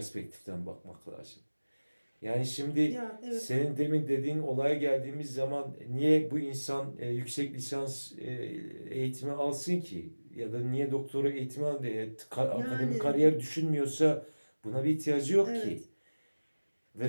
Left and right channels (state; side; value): inverted; both; correlation -1.00